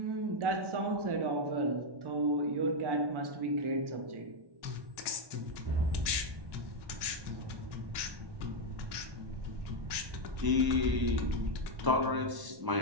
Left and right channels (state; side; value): late; left; 1.1 ms